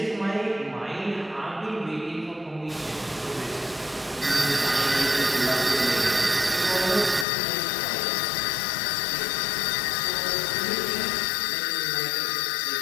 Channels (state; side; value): drops out; right; at 7.2 s